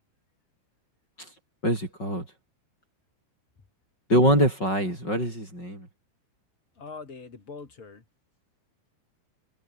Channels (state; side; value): late; right; 5.4 ms